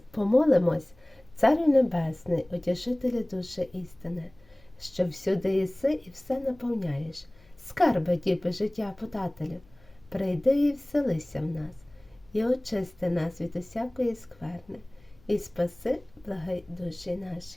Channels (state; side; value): noise; left; hum, 29 dB below the sound